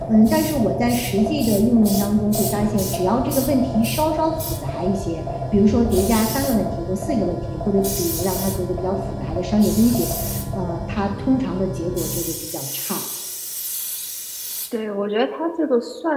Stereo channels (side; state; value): both; identical; correlation 1.00